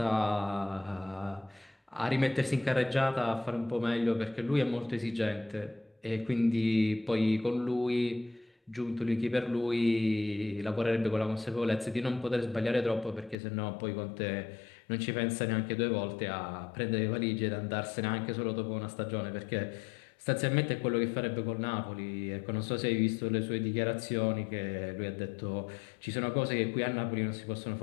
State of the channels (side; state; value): right; drops out; at 13.4 s